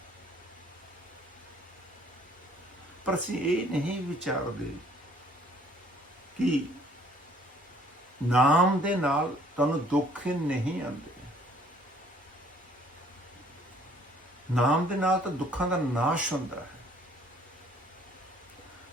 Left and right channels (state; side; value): normal; both; correlation 0.59